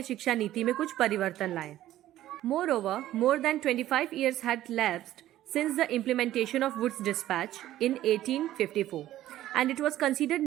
शिक्षा नीति में कुछ परिवर्तन लाएं. Moreover, more than 25 years had lapsed since the implementation of Wood's Dispatch in 1854, and it was considered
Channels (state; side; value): quieter; left; 13.7 dB